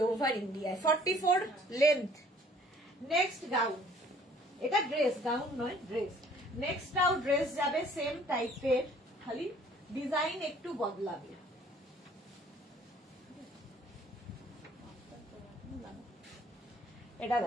ওভার ইন্ডিয়ায়। 44 লেন্থ। নেক্সট গাউন, এটা ড্রেস, গাউন নয় ড্রেস। নেক্সটটাও ড্রেস যাবে সেম টাইপের, খালি ডিজাইন একটু বদলাবে। এটা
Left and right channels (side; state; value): both; normal; correlation 0.56